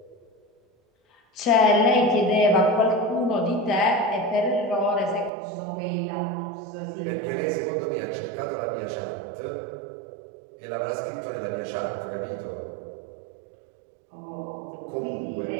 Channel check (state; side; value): drops out; left; at 5.3 s